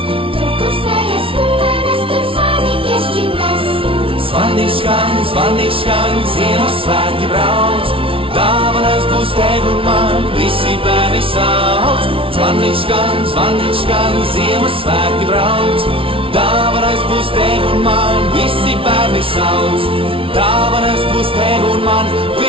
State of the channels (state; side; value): late; left; 0.26 ms